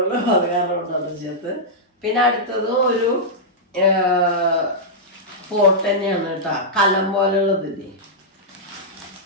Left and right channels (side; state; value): both; normal; correlation -0.10